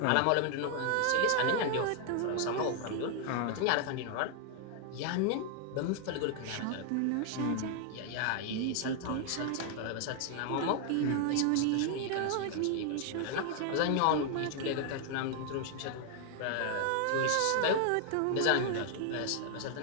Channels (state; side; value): different; both; correlation 0.00